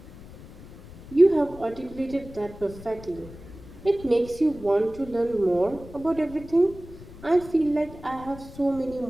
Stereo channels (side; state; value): left; noise; rumble, 17 dB below the sound